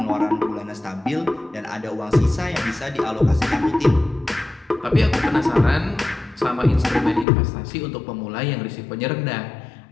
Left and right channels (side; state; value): right; drops out; at 7.2 s